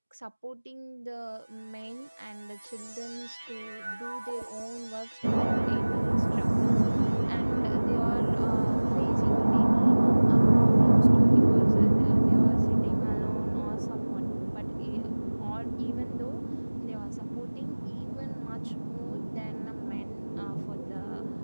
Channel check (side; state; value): both; inverted; correlation -1.00